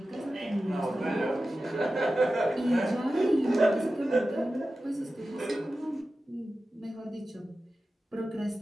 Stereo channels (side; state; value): both; normal; correlation 0.94